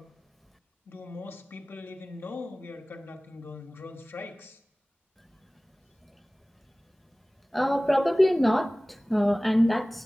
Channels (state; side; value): normal; both; correlation 0.98